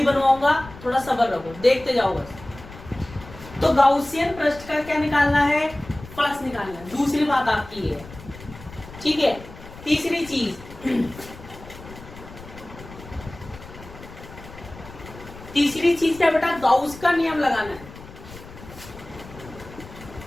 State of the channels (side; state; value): left; noise; rumble, 17 dB below the sound